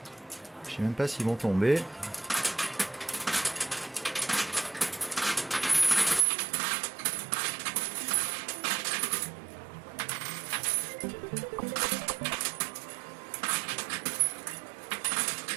Je sais même pas s'ils vont tomber.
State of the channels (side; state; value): left; drops out; at 6.2 s